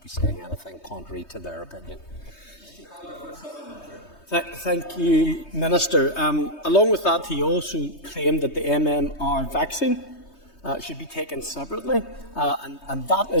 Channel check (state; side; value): late; right; 3.2 ms